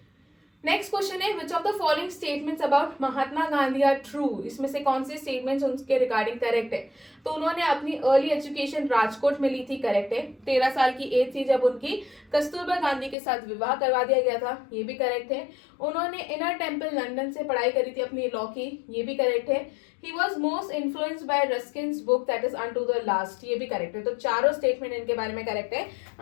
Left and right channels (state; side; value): drops out; right; at 13.2 s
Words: नेक्स्ट क्वेश्चन है which of the following statements about Mahatma Gandhi are true, इसमें से कौन से स्टेटमेंट्स उनके रिगार्डिंग करेक्ट है। तो उन्होंने अपनी अर्ली एजुकेशन राजकोट में ली थी, करेक्ट है। 13 साल की एज थी जब उनकी कस्तूरबा गांधी के साथ विवाह करवा दिया गया था, ये भी करेक्ट है। उन्होंने इनर टेम्पल लंदन से पढ़ाई करी थी अपनी लॉ की, ये भी करेक्ट है। He was most influenced by Ruskin's book that is unto the last, ये भी करेक्ट है। तो चारों स्टेटमेंट इनके बारे में करेक्ट है।